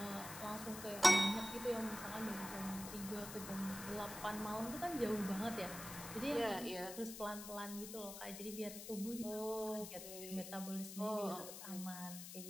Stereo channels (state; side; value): noise; left; hiss, 9 dB below the sound